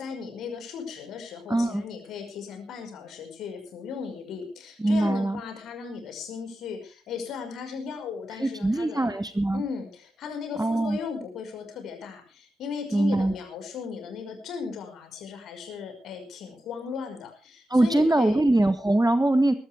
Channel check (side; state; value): both; normal; correlation 0.91